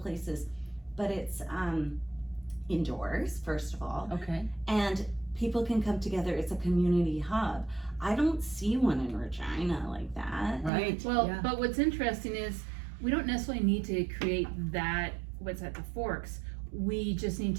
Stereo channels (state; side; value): drops out; left; at 10.7 s